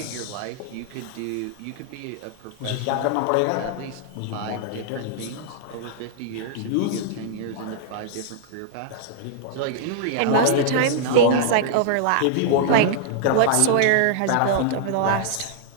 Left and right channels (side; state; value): both; different; correlation -0.01